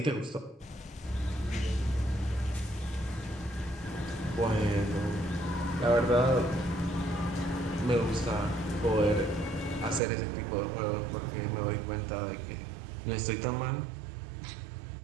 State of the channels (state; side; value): drops out; left; at 10.0 s